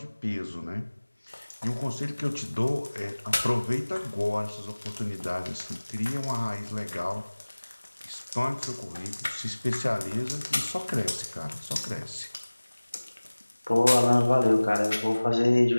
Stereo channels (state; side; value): inverted; both; correlation -1.00